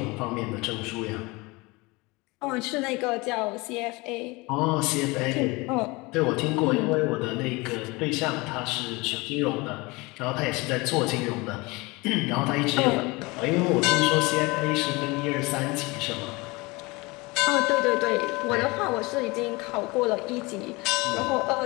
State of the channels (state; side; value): quieter; right; 24.3 dB